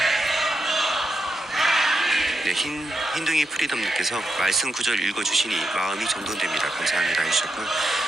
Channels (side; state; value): both; normal; correlation 0.83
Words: 네, 흰둥이 프리덤님께서 말씀 구절 읽어주시니 마음이 정돈됩니다. 감사합니다 해주셨고요.